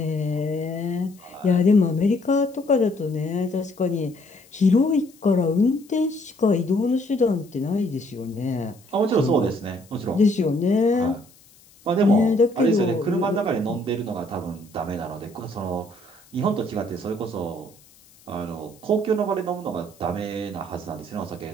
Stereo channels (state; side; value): noise; left; hiss, 27 dB below the sound